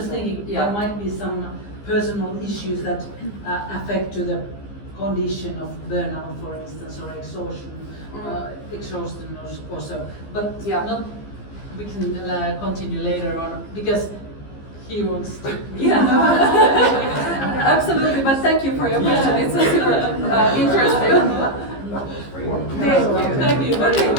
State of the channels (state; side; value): late; right; 15 ms